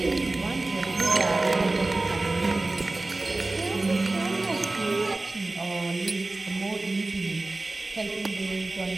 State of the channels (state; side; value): quieter; left; 3.0 dB